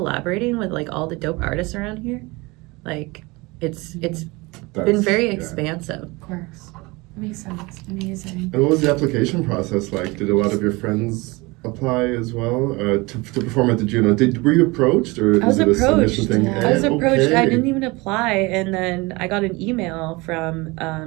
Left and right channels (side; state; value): left; quieter; 24.3 dB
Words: with like all the dope artists around here. Like it's been very expansive. Of course. Makes sense. Amazing. And what was the application process like? Did a lot of your friends apply as well to perform at the Juno? Were you approached, or I was is it a submission approached. thing? Yeah. I was approached. I Okay. didn't even apply, and then I got an email from